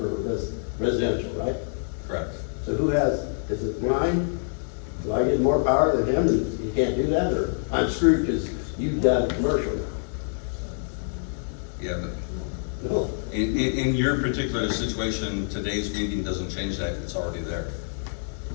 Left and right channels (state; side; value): silent; right; digital silence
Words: residential, right? Correct. So who has, is it mine? Do I get more power than him and you can't do that, or I'm screwed because you've got commercial now? Yeah, but No. in your particular situation, today's meeting doesn't change that, it's already there.